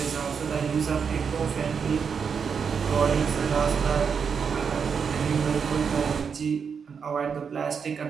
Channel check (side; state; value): left; quieter; 6.4 dB